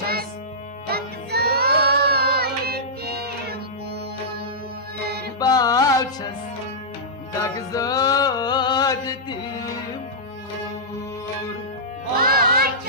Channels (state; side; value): normal; both; correlation -0.14